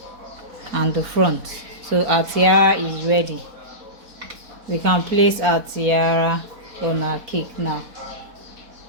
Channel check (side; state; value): left; late; 4.1 ms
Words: and the front. So our tiara is ready. We can place our tiara on our cake now.